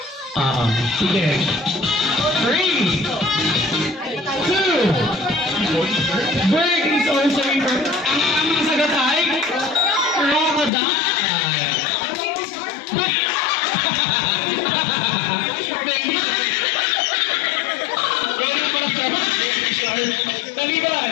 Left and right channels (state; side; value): drops out; right; at 10.7 s